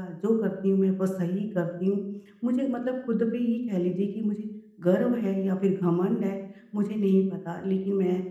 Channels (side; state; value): both; identical; correlation 1.00